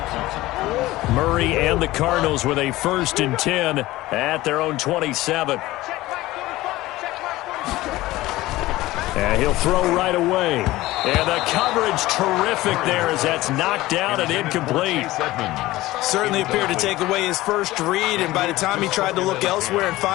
Murray and the Cardinals with a 1st and 10 at their own 27. And he'll throw right away. And the coverage terrific there as that's knocked out and incomplete. Certainly appeared to take away his first read, and by the time he tried to look elsewhere and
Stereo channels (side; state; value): right; quieter; 17.7 dB